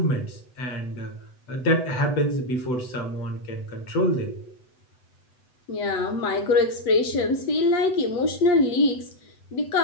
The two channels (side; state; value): right; late; 8.0 ms